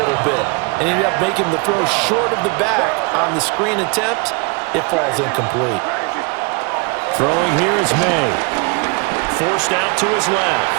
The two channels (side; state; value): left; quieter; 31.5 dB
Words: bit and ended up making the throw short of the back on the screen attempt. It falls incomplete. Throwing here is May. Forced out to his left.